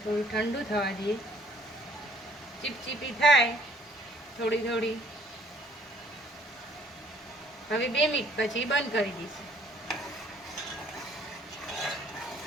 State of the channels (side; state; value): both; normal; correlation 0.60